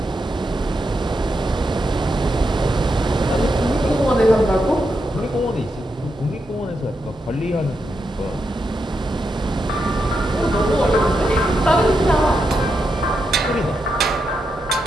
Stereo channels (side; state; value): both; normal; correlation 0.84